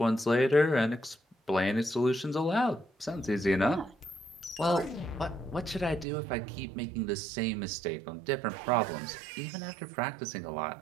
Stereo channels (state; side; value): drops out; left; at 6.1 s